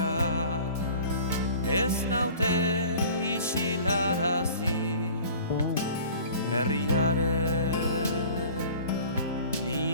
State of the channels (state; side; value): inverted; both; correlation -0.45